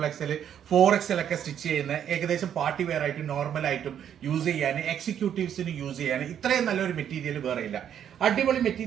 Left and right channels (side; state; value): left; quieter; 9.3 dB